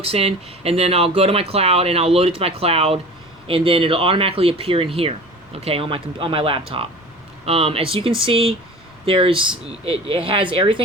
in, and then I'll go to my cloud, and I'll load it to my cloud, and then it'll automatically appear in here, okay, on my laptop. As you can see, it has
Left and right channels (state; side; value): noise; left; rumble, 28 dB below the sound